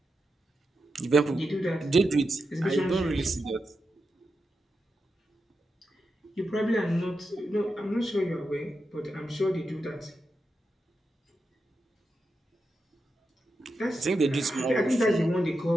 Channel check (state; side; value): normal; both; correlation 0.88